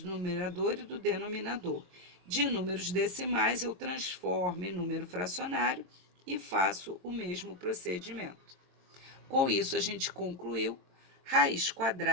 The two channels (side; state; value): left; late; 22 ms